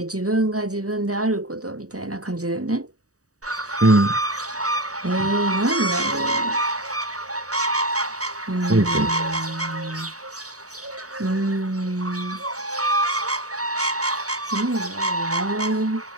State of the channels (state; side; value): late; left; 0.66 ms